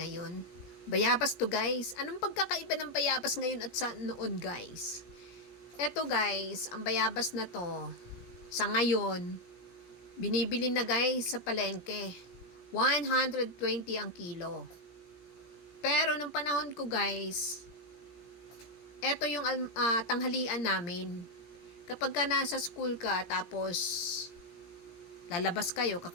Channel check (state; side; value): late; right; 17 ms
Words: Bayabas to guys. Anong pagkakaiba ng bayabas ngayon at sa noon guys? Eto guys, ang bayabas na to, sa ngayon, binibili na guys sa palengke. 120 ang kilo. Pero nung panahon ko guys, eto yung tanghalian namin. Kapag ka nasa school ka, tapos lalabas kayo,